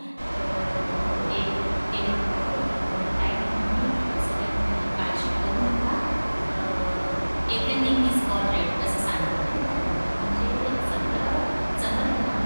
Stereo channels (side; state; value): both; inverted; correlation -1.00